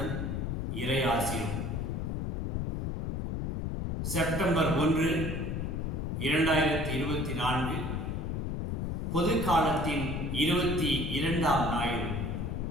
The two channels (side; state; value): left; noise; rumble, 1 dB below the sound